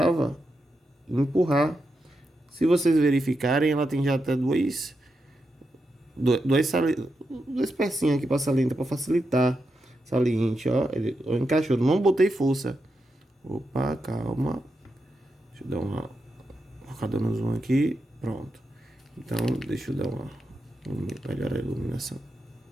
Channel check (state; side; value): normal; both; correlation 0.86